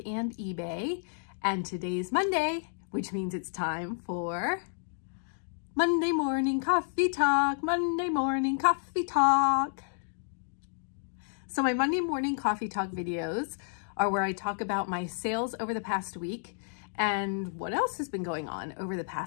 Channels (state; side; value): silent; right; digital silence